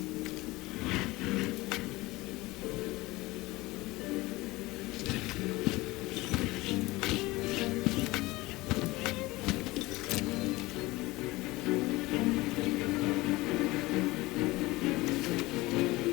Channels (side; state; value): right; quieter; 20.6 dB